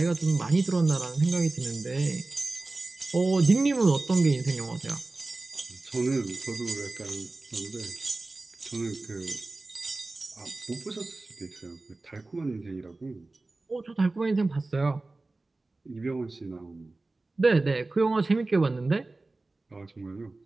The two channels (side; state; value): left; quieter; 3.2 dB